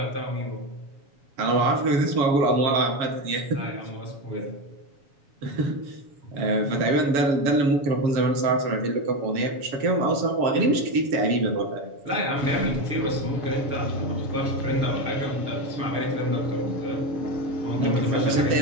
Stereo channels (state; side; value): late; left; 7.2 ms